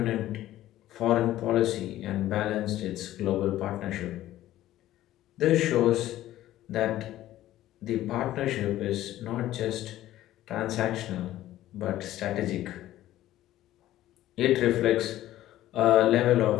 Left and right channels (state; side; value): quieter; right; 14.2 dB